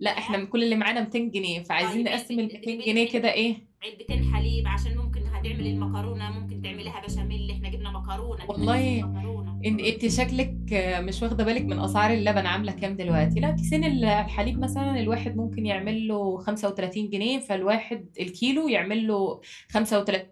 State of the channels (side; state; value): both; identical; correlation 1.00